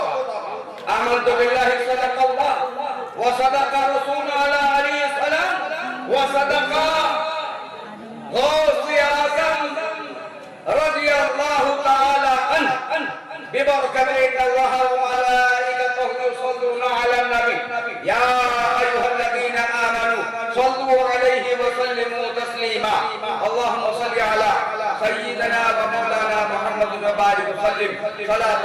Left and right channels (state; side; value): identical; both; correlation 1.00